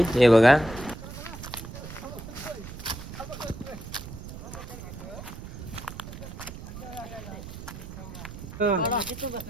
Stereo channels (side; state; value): right; noise; rumble, 11 dB below the sound